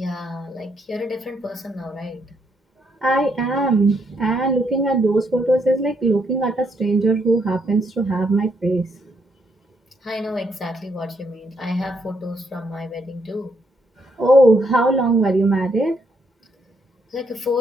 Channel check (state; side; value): normal; both; correlation 0.75